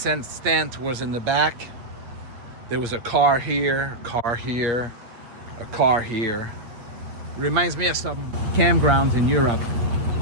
tent was in the back. There was a car here, a car here, a car here. Reminds me of some campgrounds in Europe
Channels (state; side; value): late; left; 8.6 ms